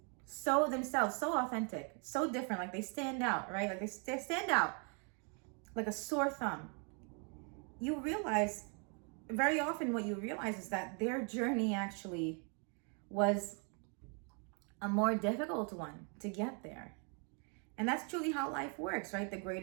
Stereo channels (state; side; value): quieter; left; 38.2 dB